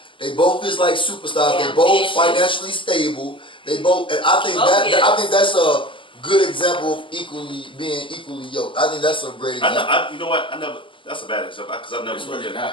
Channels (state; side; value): late; right; 0.25 ms